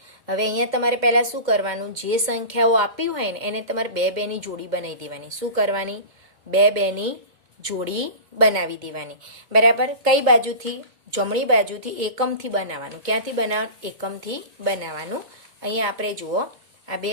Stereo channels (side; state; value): left; late; 2.1 ms